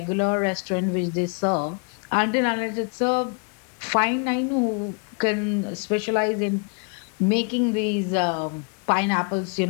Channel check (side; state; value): right; quieter; 37.6 dB